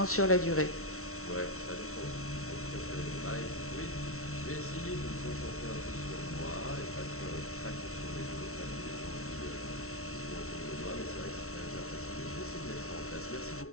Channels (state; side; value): late; right; 0.63 ms